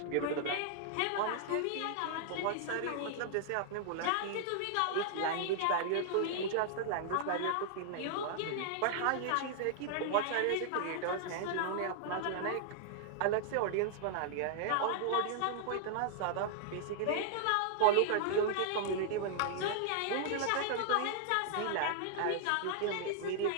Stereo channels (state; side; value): different; both; correlation -0.01